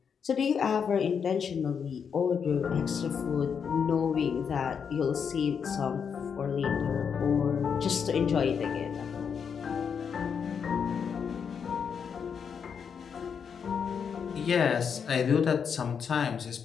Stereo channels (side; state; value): right; quieter; 6.8 dB